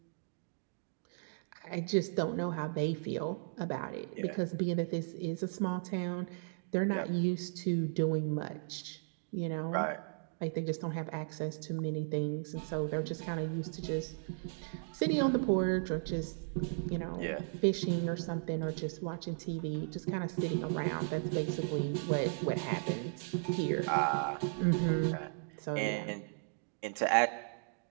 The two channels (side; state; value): left; silent; digital silence